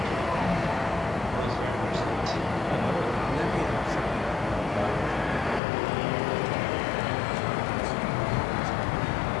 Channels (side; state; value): right; drops out; at 5.6 s